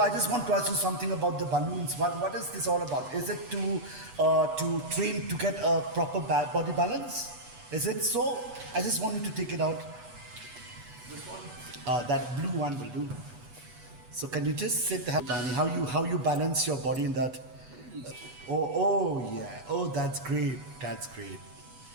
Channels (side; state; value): left; late; 8.2 ms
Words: I just want to ask you something about the balloons. What is this all about? Is it to train to get a proper body balance? Is it so? I just want you to take it out. This one. That blue one will do. So can you just sit Danny, how you balance your body in that? Oh yeah. Oh, that's great.